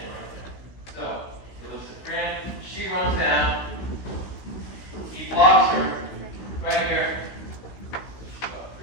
arms down. He blocks her right here.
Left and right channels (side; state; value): right; late; 16 ms